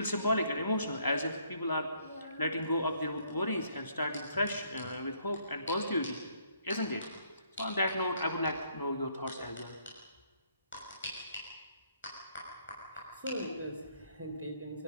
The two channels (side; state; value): both; inverted; correlation -0.68